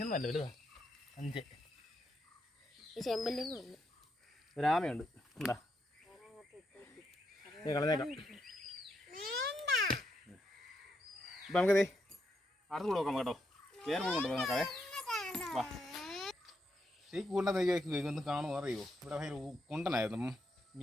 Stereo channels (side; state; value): both; normal; correlation 0.80